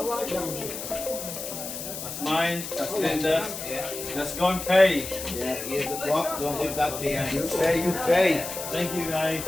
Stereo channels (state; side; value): noise; left; hiss, 8 dB below the sound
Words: That's mine. That's Linda's. Let's go and pay. Yeah, here's the clock, don't give that to you. You pay, you pay. Thank you, guys.